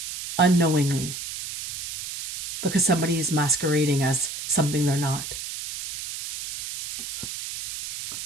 because somebody is masquerading as something they're not.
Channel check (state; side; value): noise; right; hiss, 8 dB below the sound